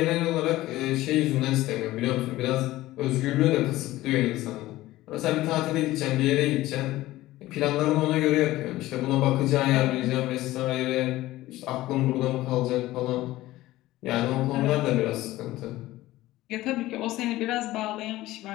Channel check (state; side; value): quieter; right; 16.8 dB